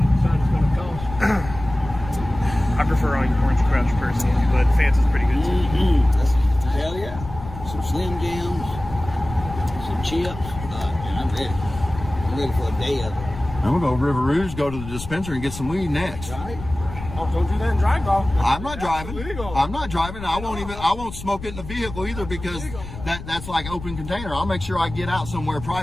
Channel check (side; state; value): left; noise; rumble, 11 dB below the sound